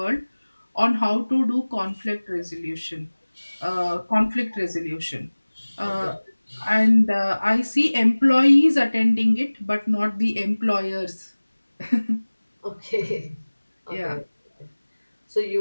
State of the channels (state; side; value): inverted; both; correlation -1.00